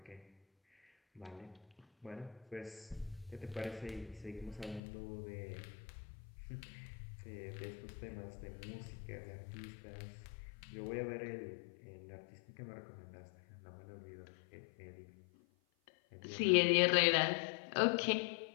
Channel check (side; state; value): right; drops out; at 4.8 s